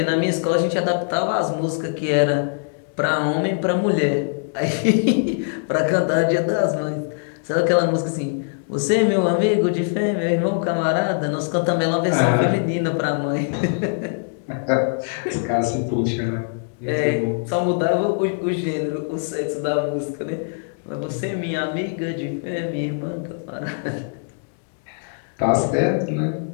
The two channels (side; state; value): right; silent; digital silence